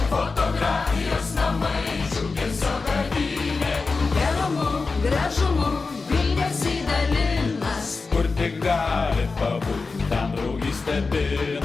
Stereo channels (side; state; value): right; quieter; 4.2 dB